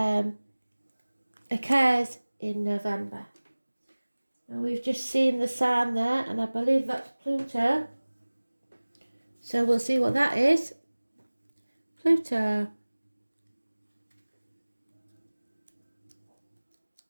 occurs in November. And we've just seen the sign there, and I believe that's Pluto. So we'll see what that is. Pluto.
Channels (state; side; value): inverted; both; correlation -1.00